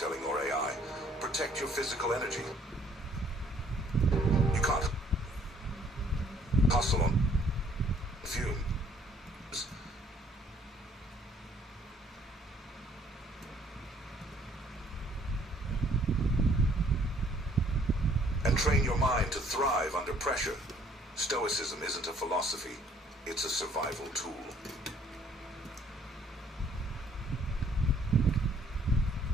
or AI. Protect your physical energy. You can't hustle on fumes. And train your mind to thrive under pressure. Stoicism isn't a philosophy, it's a survival tool.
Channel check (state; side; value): normal; both; correlation 0.61